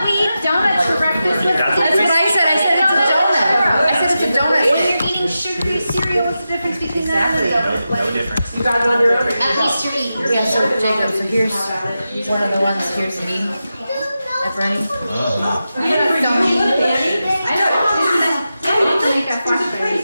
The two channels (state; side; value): inverted; both; correlation -0.91